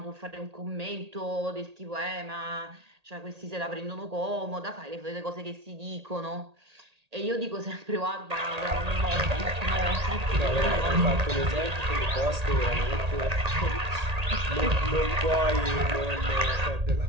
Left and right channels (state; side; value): late; left; 1.8 ms